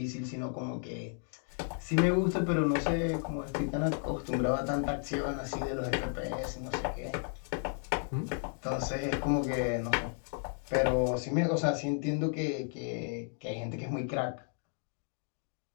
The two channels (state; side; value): silent; right; 55 dB below the other